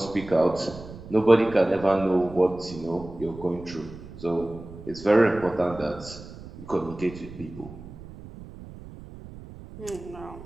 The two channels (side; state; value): right; noise; rumble, 15 dB below the sound